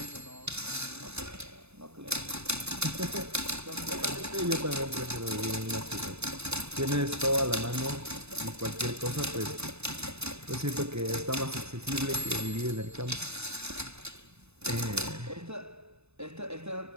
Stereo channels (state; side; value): late; left; 0.80 ms